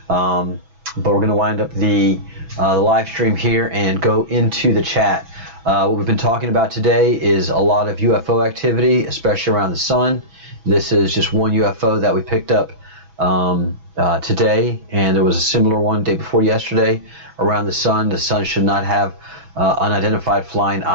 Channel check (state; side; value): late; left; 6.1 ms